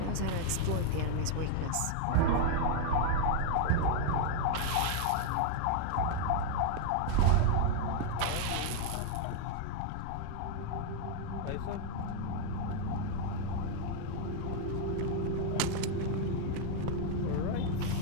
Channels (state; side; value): different; both; correlation 0.00